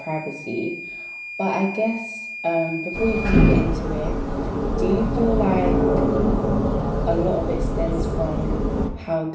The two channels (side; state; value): both; identical; correlation 1.00